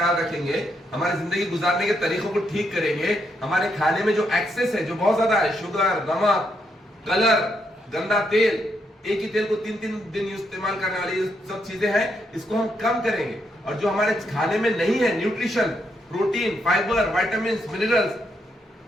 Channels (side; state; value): both; normal; correlation 0.78